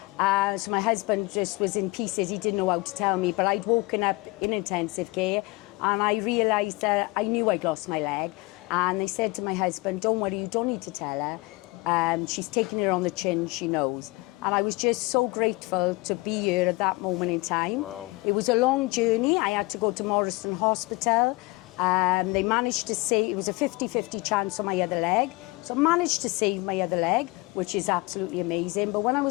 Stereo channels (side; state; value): right; quieter; 23.5 dB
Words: So my husband just was in pieces. He didn't know how to tell me, but I'd woken up in intensive care and I realised that I knew I'd lost my leg. And they said to my husband, don't worry, you don't need to tell her. She's taking it on the chin, she knows. And I was just so grateful to be here at that moment in time. Wow. It was a long journey. I had to go to Morrison Hospital. They managed to save, it was a 50-50 chance on my other leg. So I managed to save my other leg, which is absolutely amazing. But when I